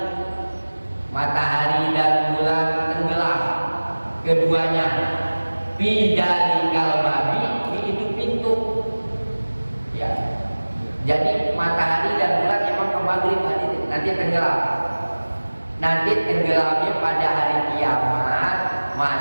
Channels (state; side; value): inverted; both; correlation -1.00